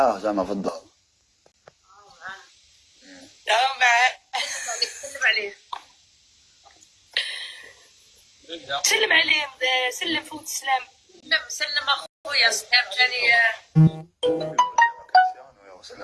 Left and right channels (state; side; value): identical; both; correlation 1.00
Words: زعما في الدار. معاه. سلم عليه. سلم عليه، سلم فوت السلام. سلم اخويا سلام ثاني.